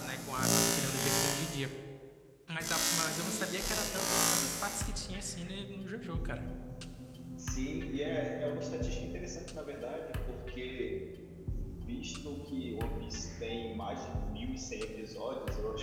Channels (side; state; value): both; identical; correlation 1.00